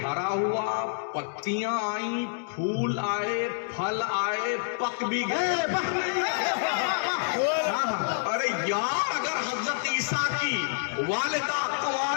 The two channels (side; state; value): right; silent; digital silence